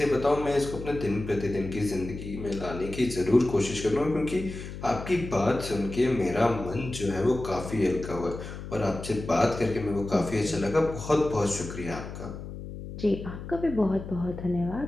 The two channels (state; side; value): noise; left; hum, 10 dB below the sound